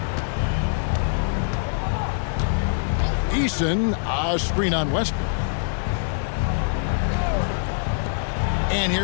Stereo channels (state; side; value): silent; right; 63 dB below the other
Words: Eason, a screen on Westbrook. And